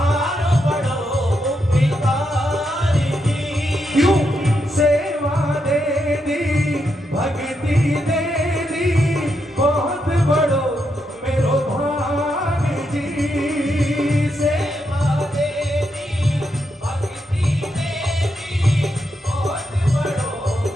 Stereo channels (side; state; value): both; normal; correlation 0.82